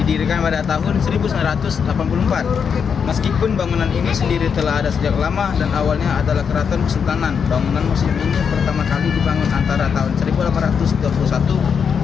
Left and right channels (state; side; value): quieter; right; 6.7 dB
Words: didirikan pada tahun 1984. Meskipun bangunan ini sendiri telah ada sejak lama dan awalnya adalah keraton kesultanan, bangunan museum ini pertama kali dibangun antara tahun